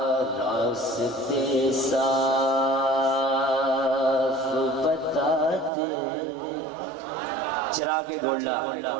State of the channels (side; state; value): left; drops out; at 5.7 s